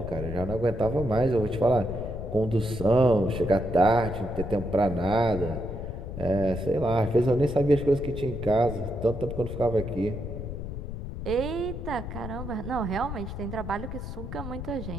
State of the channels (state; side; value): noise; left; rumble, 7 dB below the sound